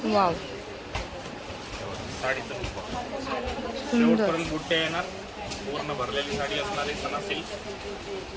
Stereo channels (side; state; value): both; identical; correlation 1.00